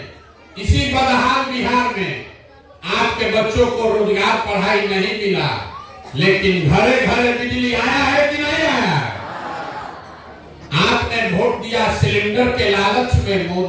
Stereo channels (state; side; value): identical; both; correlation 1.00